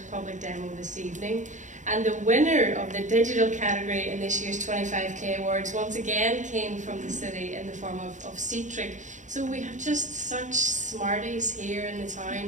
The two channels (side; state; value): left; late; 0.36 ms